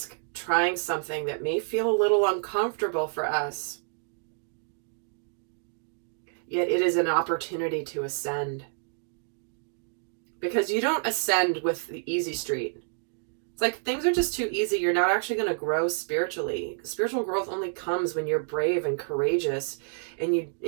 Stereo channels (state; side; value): silent; left; digital silence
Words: trying something that may feel a little uncomfortable for us. Yet it is an opportunity to ascend. Because you don't ascend with the easy street. It's like things are just too easy. You're not actually going to grow spiritually. Spiritual growth only comes when you're brave and courageous and